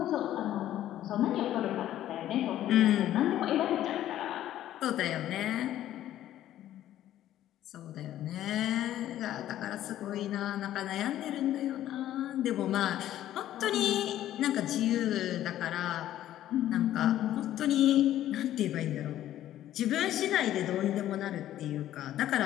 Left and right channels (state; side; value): quieter; right; 12.6 dB